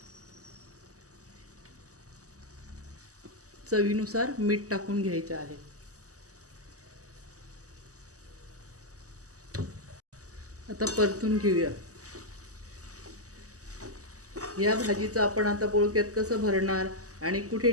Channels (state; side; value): late; left; 0.66 ms